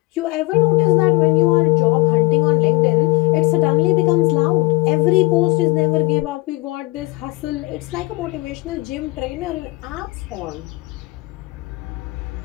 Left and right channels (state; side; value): quieter; right; 21.9 dB